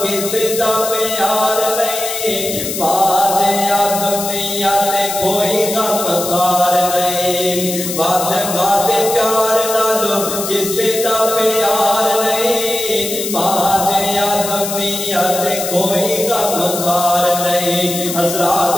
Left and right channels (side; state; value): left; noise; hiss, 5 dB below the sound